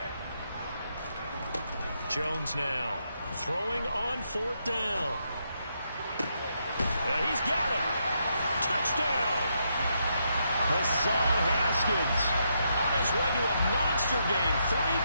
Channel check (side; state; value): both; inverted; correlation -0.79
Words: Jones now throwing on 4th down. He's got it. Touchdown. Hassan Haskins on his way to a monster game. 3